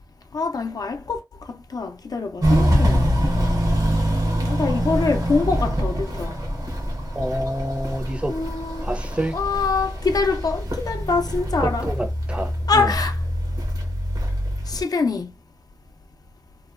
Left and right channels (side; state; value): both; normal; correlation 0.83